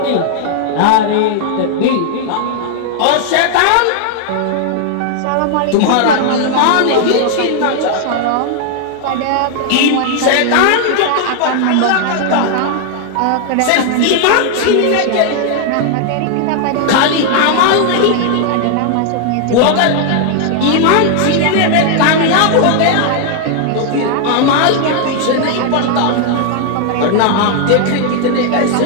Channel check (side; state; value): both; different; correlation 0.00